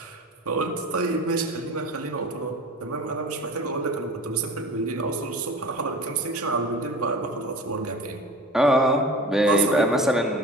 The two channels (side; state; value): both; normal; correlation 0.36